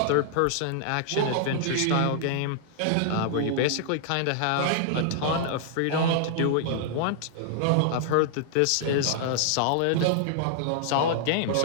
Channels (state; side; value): different; both; correlation -0.01